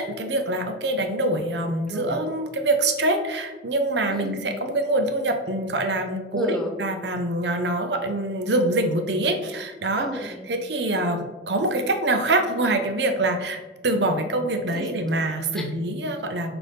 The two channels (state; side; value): normal; both; correlation 0.10